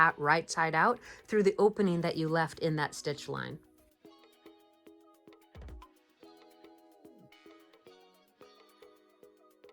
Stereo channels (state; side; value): identical; both; correlation 1.00